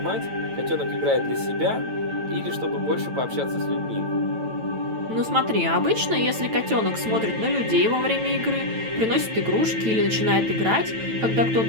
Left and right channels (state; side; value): late; left; 9.0 ms